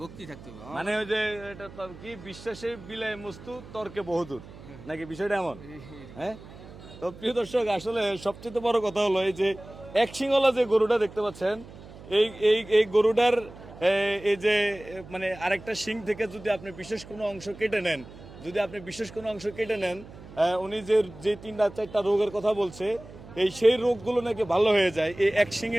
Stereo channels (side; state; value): right; noise; hum, 17 dB below the sound